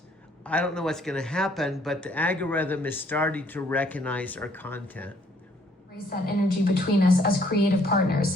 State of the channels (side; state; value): both; normal; correlation 0.64